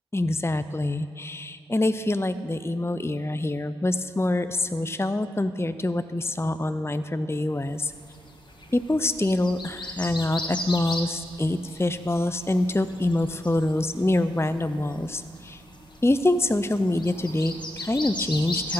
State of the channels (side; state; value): both; normal; correlation 0.88